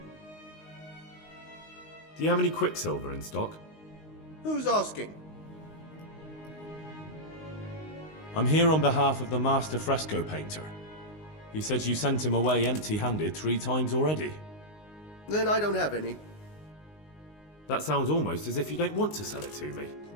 Do you have any quicksilver in stock? Who's asking? I'm here on behalf of the master fresco painter. He said you sent him away empty-handed 3 times already. Then I don't have any. That sounds almost as if you don't want to sell it to me.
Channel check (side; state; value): right; late; 19 ms